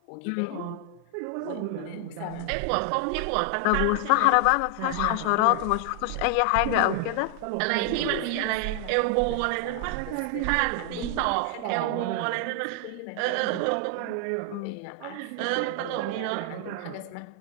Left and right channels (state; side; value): different; both; correlation 0.00